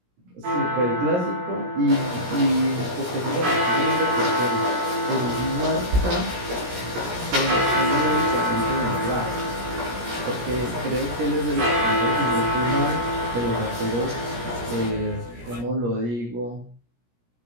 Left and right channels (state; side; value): late; left; 17 ms